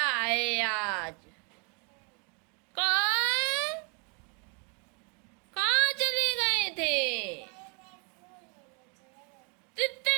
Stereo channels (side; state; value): left; quieter; 35.5 dB